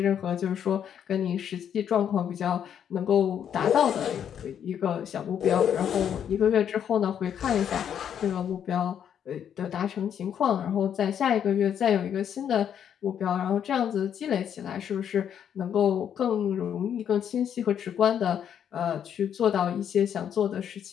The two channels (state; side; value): quieter; right; 8.9 dB